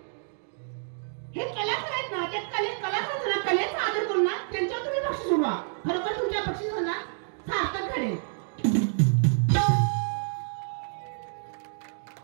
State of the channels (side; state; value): left; silent; digital silence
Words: हे कलाकार आहेत ना, त्या कलाकारांना कलेचा आदर करून ना त्यांच्यावर तुम्ही बक्षीस उडवा. खरोखर तुमच्या बक्षिसांना सार्थक घडेल.